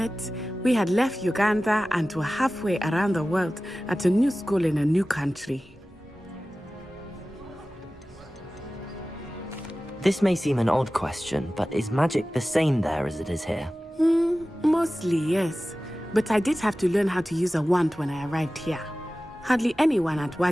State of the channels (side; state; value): both; normal; correlation 0.96